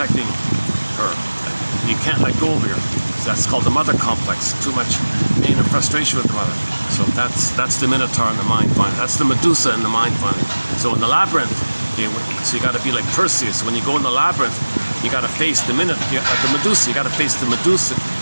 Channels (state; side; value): inverted; both; correlation -1.00